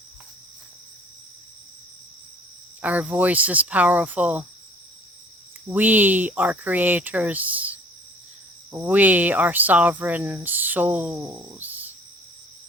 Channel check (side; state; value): both; normal; correlation 0.53